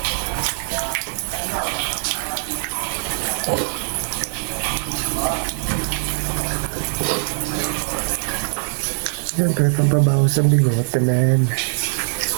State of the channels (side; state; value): left; silent; 62 dB below the other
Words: Siyempre, pampabawas ang bigote, man.